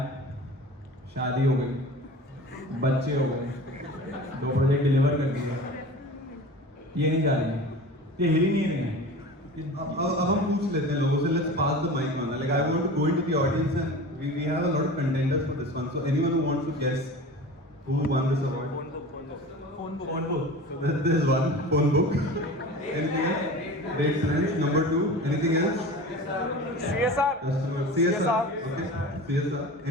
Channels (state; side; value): normal; both; correlation 0.35